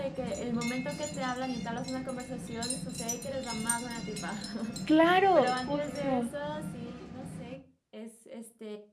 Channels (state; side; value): identical; both; correlation 1.00